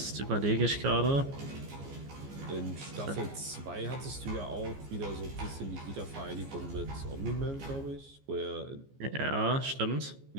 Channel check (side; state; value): left; late; 15 ms